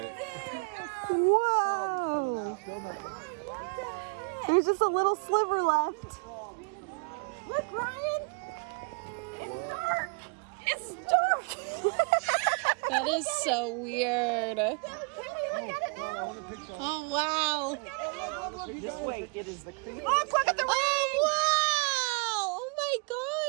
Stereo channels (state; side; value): quieter; left; 34.1 dB